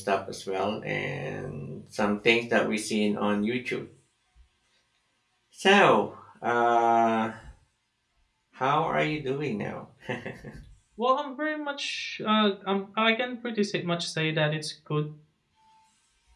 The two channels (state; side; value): identical; both; correlation 1.00